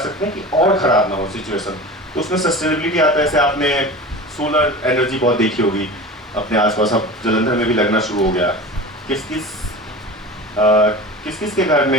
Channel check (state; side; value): normal; both; correlation 0.34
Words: हैं कि और ख़राब ना हो सिचुएशन। तो उसमें सस्टेनेबिलिटी आता है। जैसे आपने सोलर एनर्जी बहुत देखी होगी अपने आसपास, अब जलंधर में भी लगना शुरू हो गया। किस किस के घर में